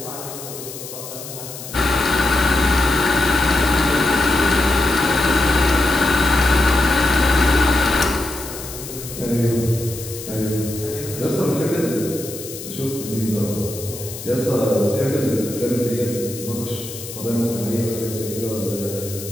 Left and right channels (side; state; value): left; noise; hiss, 11 dB below the sound